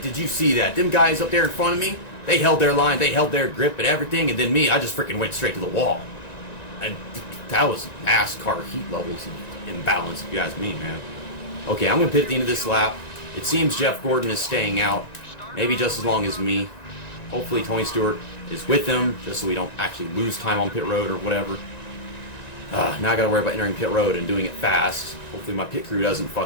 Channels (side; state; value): right; late; 1.9 ms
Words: did you see that? Them guys up there in front of me, they held their line, they held their grip and everything, and then me, I just freaking went straight to the wall. And that was NASCAR heat levels imbalance, if you ask me, man. Okay, I'm going to pit at the end of this lap. It seems Jeff Gordon is staying out, maybe just as long as me. Hopefully Tony Stewart is with him, just so we don't actually lose time on pit road or whatever. Now I gotta worry about entering pit road and doing it fast. Hopefully my pit crew doesn't